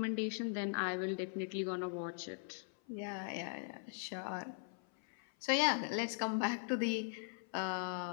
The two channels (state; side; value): silent; right; 51 dB below the other